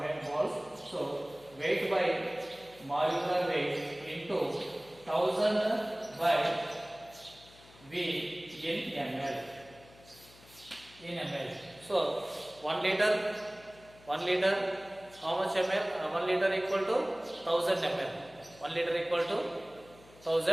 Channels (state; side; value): noise; left; hum, 24 dB below the sound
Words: moles. So weight by molecular weight into 1000 by V in ml. So 1 liter, how much ml? 1 liter equal to 1000 ml. 1 liter equal to